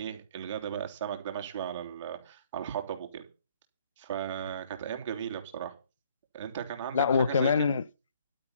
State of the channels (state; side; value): inverted; both; correlation -0.60